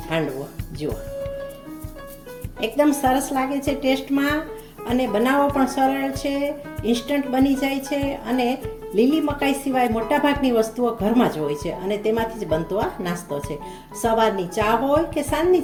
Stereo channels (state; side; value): identical; both; correlation 1.00